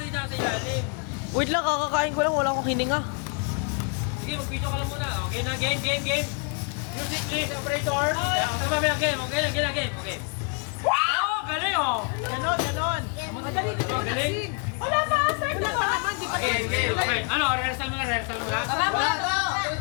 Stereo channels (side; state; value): right; quieter; 38.0 dB